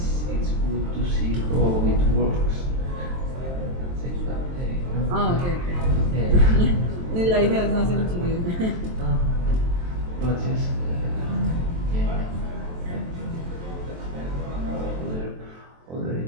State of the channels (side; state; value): left; late; 23 ms